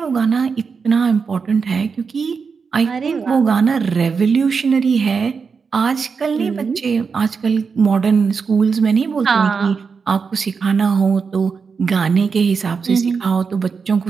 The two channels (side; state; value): left; quieter; 5.4 dB